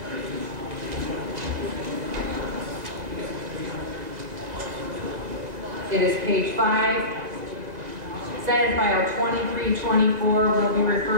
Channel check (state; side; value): late; left; 1.9 ms